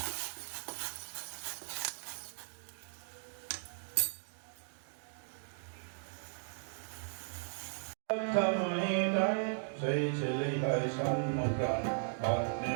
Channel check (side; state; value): left; silent; digital silence